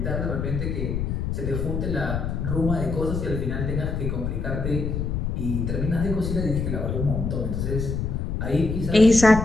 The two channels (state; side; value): noise; left; rumble, 2 dB below the sound